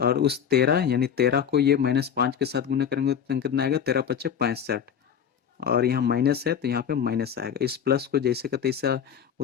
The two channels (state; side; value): quieter; right; 8.2 dB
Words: उस 13 यानी 13 को ये -5 के साथ गुना करेंगे तो कितना आएगा, 13×5 = 65। और यहाँ माइनस है तो यहाँ पे माइनस आएगा। इस प्लस को जैसे का तैसा